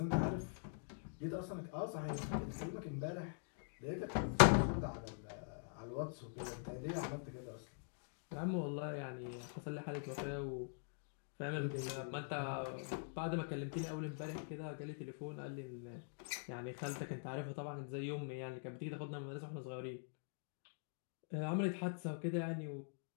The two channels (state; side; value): silent; right; digital silence